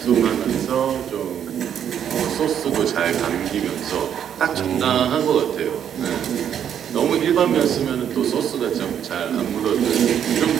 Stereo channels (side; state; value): left; quieter; 9.1 dB